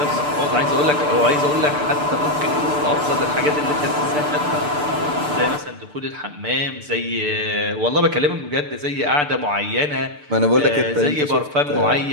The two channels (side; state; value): left; late; 6.8 ms